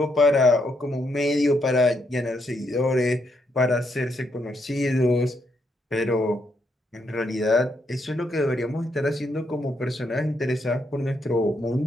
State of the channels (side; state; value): both; normal; correlation 0.77